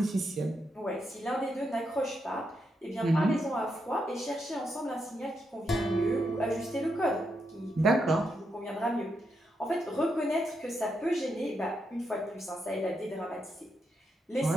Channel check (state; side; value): normal; both; correlation 0.82